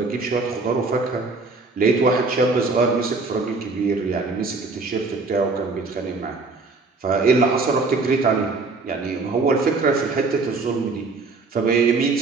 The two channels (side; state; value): left; quieter; 3.9 dB